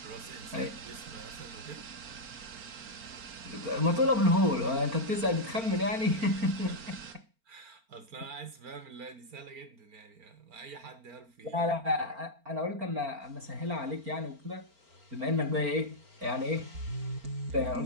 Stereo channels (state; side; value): late; left; 4.4 ms